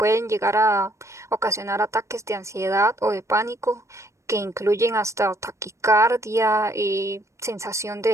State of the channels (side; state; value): left; late; 0.14 ms